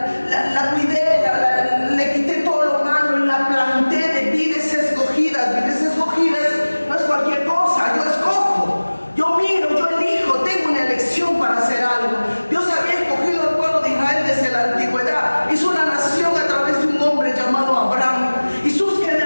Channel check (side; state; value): both; inverted; correlation -1.00